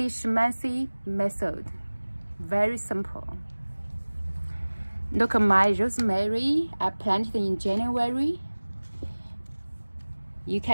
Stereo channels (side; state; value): both; inverted; correlation -1.00